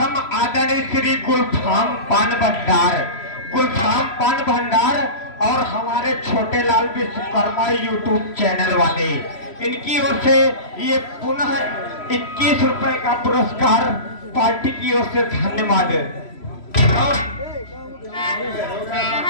आदरणीय श्री गुलफाम पान भंडार और हमारे छोटे लाल विश्वकर्मा यूट्यूब चैनल वाले, इनकी ओर से ये पुनः 21 रुपए का पुरस्कार पार्टी की ओर से धन्यवाद।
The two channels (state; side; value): late; right; 3.0 ms